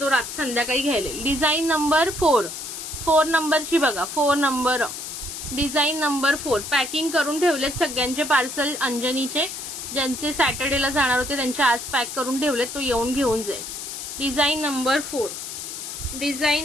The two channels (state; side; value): noise; left; hiss, 8 dB below the sound